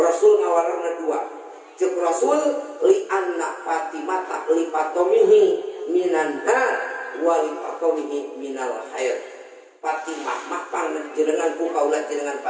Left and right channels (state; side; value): identical; both; correlation 1.00